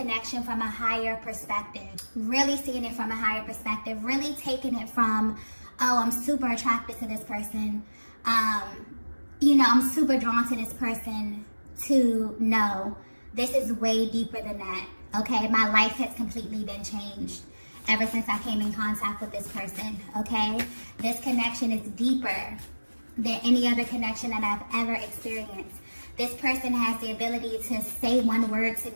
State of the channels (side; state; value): both; inverted; correlation -1.00